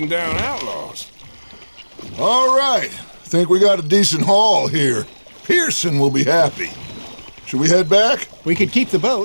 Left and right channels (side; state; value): both; inverted; correlation -1.00